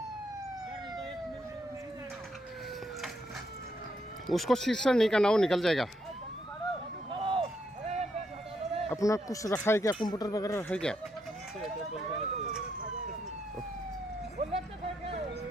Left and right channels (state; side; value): normal; both; correlation 0.77